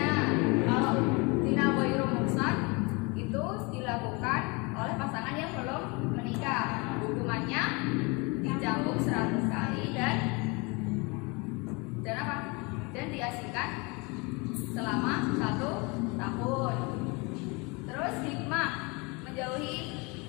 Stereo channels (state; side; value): quieter; right; 28.6 dB